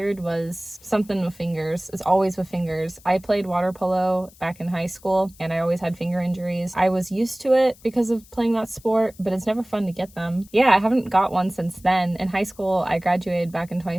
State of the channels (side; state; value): left; noise; hiss, 25 dB below the sound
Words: was something with fingers. It's always with fingers. I played water polo back in high school and I always had finger injuries. I was used to it because of playing that sport, but it's never fun to get them. Yeah, I haven't got one since then. In high school, I graduated back in